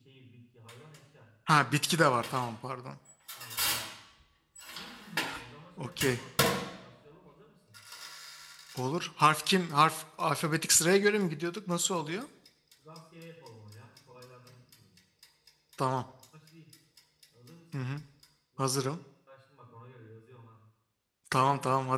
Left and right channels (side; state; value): both; identical; correlation 1.00